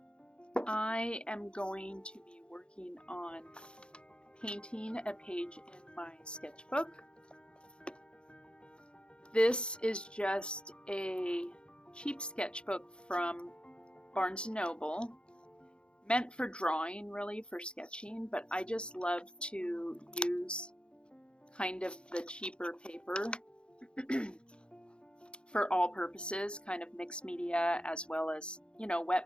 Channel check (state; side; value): late; right; 0.054 ms